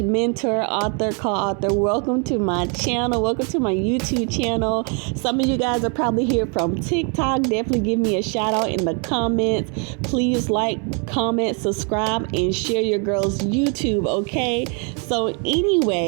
mentor, author, co-author. Welcome to my channel. Welcome to my YouTube channel. Some of you guys are probably here from TikTok. Definitely give me a shout out in the comments. Please like, comment, subscribe, and share your girl's YouTube, okay? So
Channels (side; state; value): left; quieter; 37.0 dB